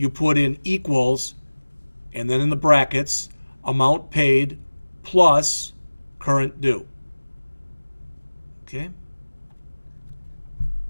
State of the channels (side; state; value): both; inverted; correlation -1.00